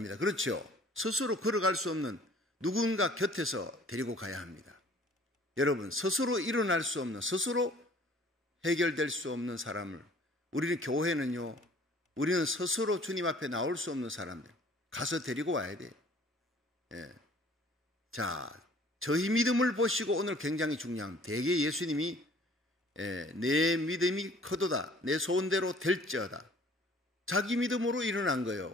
그렇죠? 스스로 걸어갈 수 없는 누군가 곁에서 데리고 가야 합니다. 여러분, 스스로 일어날 수 없는, 스스로 해결될 수 없는 사람을, 우리는 교회는요, 우리는 스스로 주님 앞에 나올 수 없는 사람들 가서 데리고 와야 돼요. 자, 저희 믿음을 보시고 오늘 굉장히 중요한, 대개 예수님이 내 믿음이 커도다 내 소원대로 될지어다. 자기 믿음으로 일어난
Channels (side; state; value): both; normal; correlation 0.53